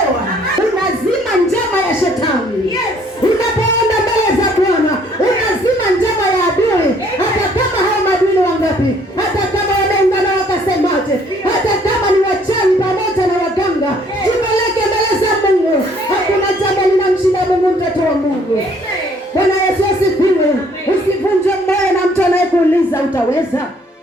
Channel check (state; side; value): normal; both; correlation 0.62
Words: Unazima njama ya shetani. Unapoenda mbele za Bwana, unazima njama ya adui. Hata kama hao maadui ni wangapi, hata kama wameungana wakasemaje, hata kama ni wachawi pamoja na waganga, jipeleke mbele za Mungu. Hakuna jambo linamshinda Mungu, mtoto wa Mungu. Bwana Yesu asifiwe. Usivunje moyo na mtu anayekuuliza utaweza.